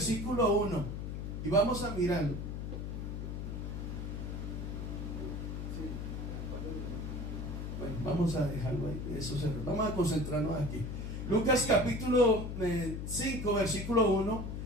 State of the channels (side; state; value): left; noise; hum, 5 dB below the sound